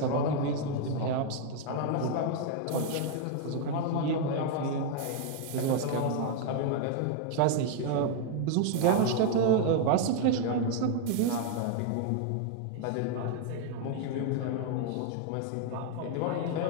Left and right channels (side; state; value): both; different; correlation 0.00